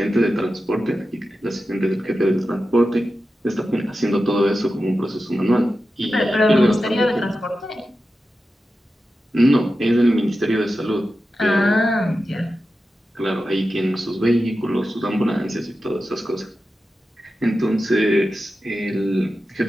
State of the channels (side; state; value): both; normal; correlation 0.92